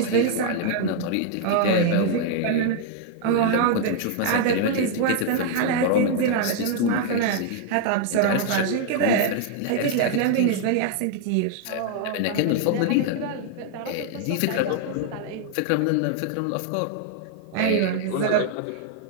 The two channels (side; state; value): both; different; correlation 0.00